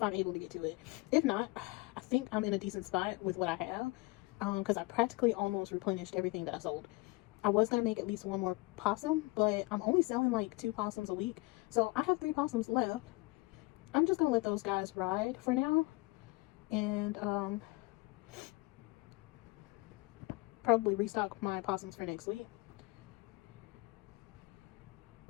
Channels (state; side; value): quieter; right; 23.5 dB